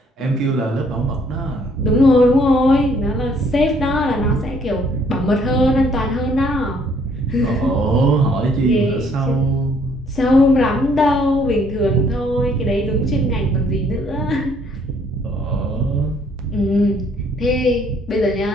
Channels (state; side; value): normal; both; correlation 0.64